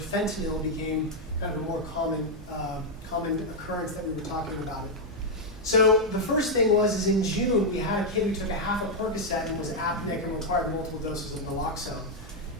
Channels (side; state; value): both; normal; correlation -0.01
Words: became kind of a more common occurrence that we were talking about it. So the first thing is in June, we had a kid who took a half a Percocet and was apneic and required multiple doses of naloxone.